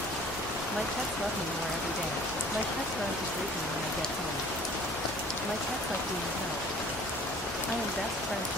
My pets love me more every day. My pets run to greet me when I get home. My pets like being held. I am best friends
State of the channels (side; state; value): both; normal; correlation 0.49